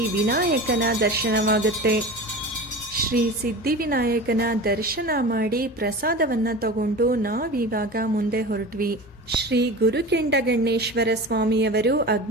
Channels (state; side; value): normal; both; correlation 0.32